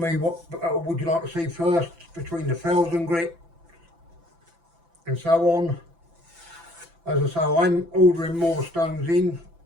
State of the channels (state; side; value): late; left; 5.9 ms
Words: what would you like to see first between the fells and grit and so on. As I say, I'm ordering more stones in,